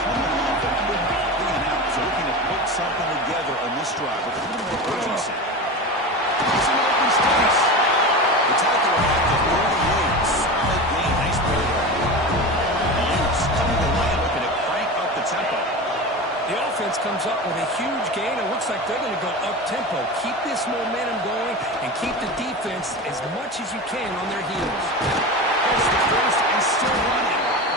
Comes up with a huge gain. It looks like they're going to go up-tempo. Keep this momentum going and keep the defense as much as you can on their heels. There's the first and still running.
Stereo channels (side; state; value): both; normal; correlation 0.27